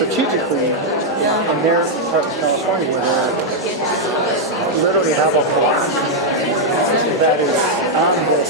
in their part of California, where they literally have a block that is on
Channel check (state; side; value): normal; both; correlation -0.02